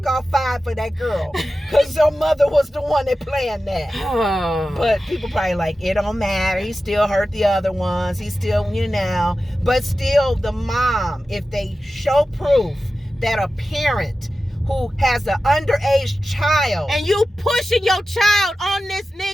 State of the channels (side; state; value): both; normal; correlation 0.94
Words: 5 for that girl. Because your mother was the one that planned that. But people probably like, it don't matter. He still hurt the other ones. He still, But still, the mom, if they show proof that a parent who has an underage child. And you pushing your child on this